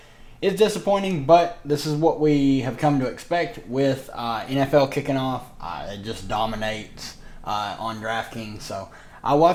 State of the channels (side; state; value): both; identical; correlation 1.00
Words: It's disappointing, but this is what we have come to expect with NFL kicking off. It just dominates on Draftkings. So we'll